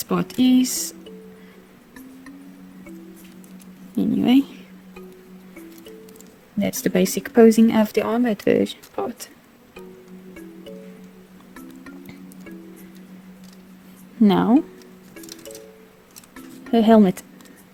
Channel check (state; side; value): identical; both; correlation 1.00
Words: part is. Anyway, that's the basic posing of the armored part. Now, her helmet.